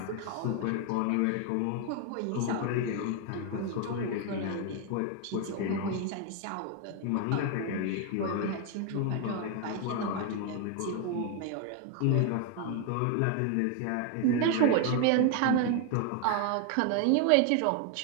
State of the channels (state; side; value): different; both; correlation 0.01